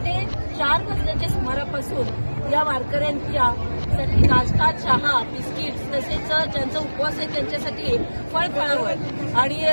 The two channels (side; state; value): both; inverted; correlation -1.00